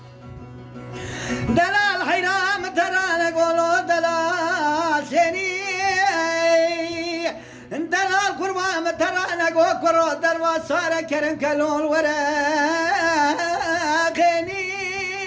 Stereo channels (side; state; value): both; identical; correlation 1.00